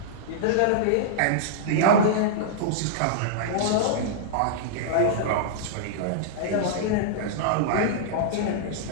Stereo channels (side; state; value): both; different; correlation -0.02